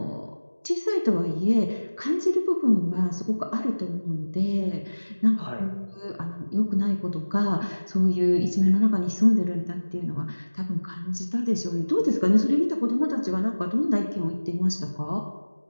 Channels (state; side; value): inverted; both; correlation -1.00